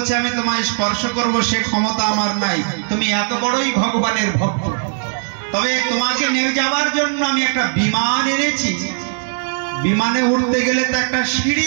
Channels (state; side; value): silent; left; 60 dB below the other